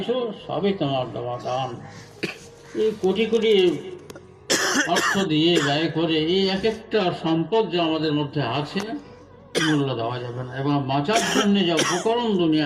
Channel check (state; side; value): identical; both; correlation 1.00